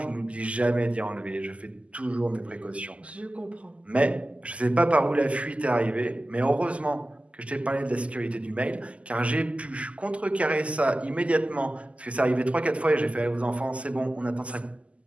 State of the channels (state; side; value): late; left; 0.063 ms